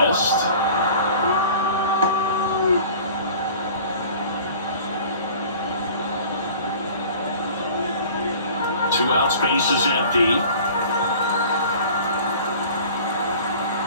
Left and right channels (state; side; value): inverted; both; correlation -0.45